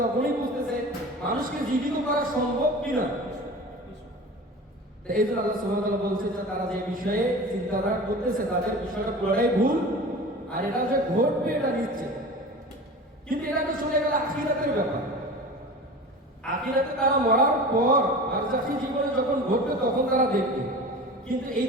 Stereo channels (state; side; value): normal; both; correlation 0.36